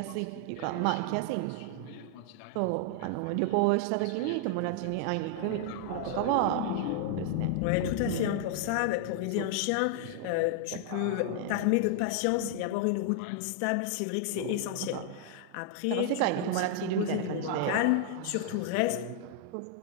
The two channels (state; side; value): different; both; correlation 0.00